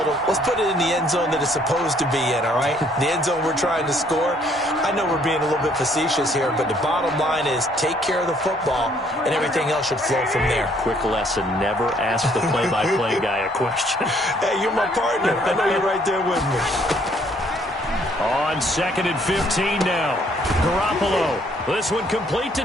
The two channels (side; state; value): both; normal; correlation 0.65